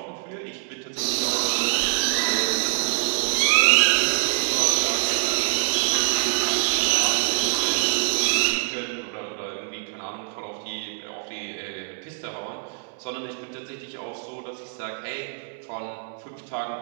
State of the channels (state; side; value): quieter; left; 33.5 dB